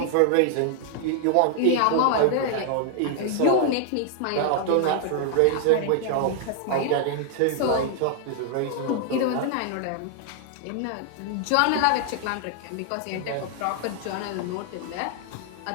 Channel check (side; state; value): both; different; correlation 0.00